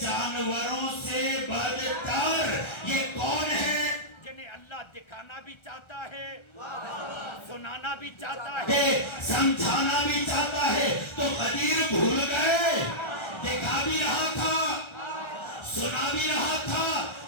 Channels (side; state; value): right; late; 1.3 ms